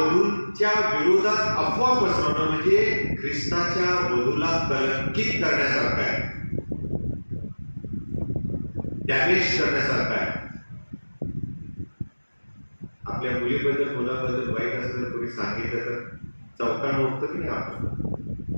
विरोधात अफवा पसरवणं म्हणजे ख्रिस्ताच्या वधूला कलंकित करण्यासारखं आहे, डॅमेज करण्यासारखं आहे. आपल्या मुलीबद्दल मुलाबद्दल वाईट असं जर कोणी सांगितलं तर चौकानं उठतं की नाही आपण?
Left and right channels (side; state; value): both; inverted; correlation -1.00